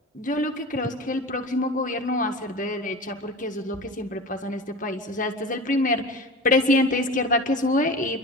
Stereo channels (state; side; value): normal; both; correlation 0.32